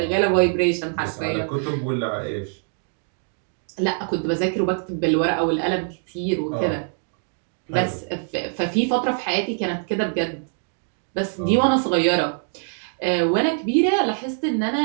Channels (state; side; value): silent; left; 63 dB below the other